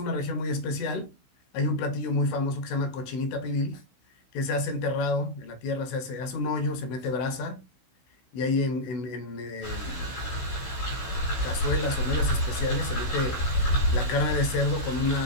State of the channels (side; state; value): right; late; 16 ms